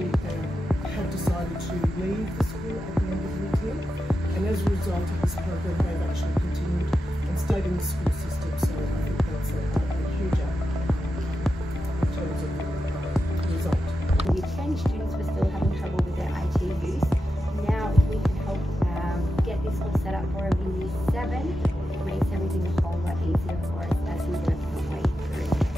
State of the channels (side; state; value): both; normal; correlation 0.89